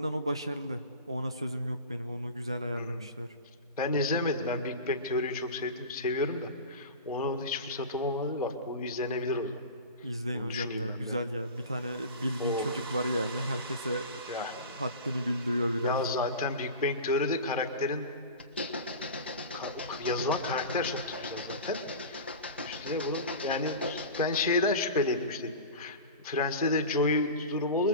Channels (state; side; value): inverted; both; correlation -0.31